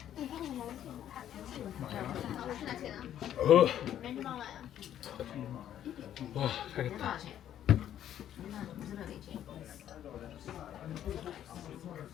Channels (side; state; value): right; quieter; 10.9 dB